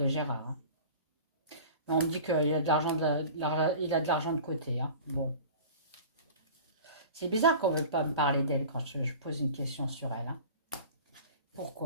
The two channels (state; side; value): inverted; both; correlation -0.38